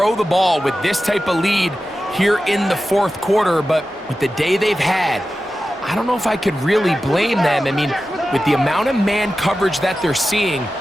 the ball with this type of lead here in the fourth quarter, but with the day they've had, I don't know if I could really blame them. I mean, with the amount of man coverage that they're seeing,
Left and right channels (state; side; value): normal; both; correlation 0.93